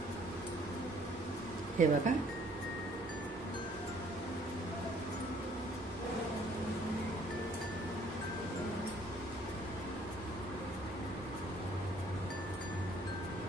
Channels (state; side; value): normal; both; correlation 0.60